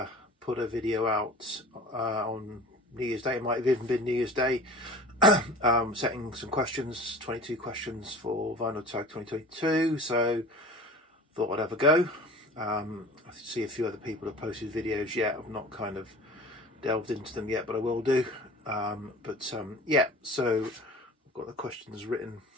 put a video out on New Year's Day. It might have even been New Year's Day, setting some questions, 22 questions for Vinyl Tag 2022. So thought I'd have a go. I see a few other people have posted videos yet. I've not kind of delved into them yet, but I will do. Yeah, so I've got the questions written,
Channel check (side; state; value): both; normal; correlation 0.40